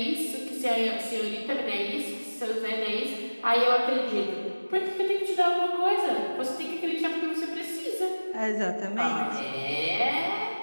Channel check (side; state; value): both; inverted; correlation -1.00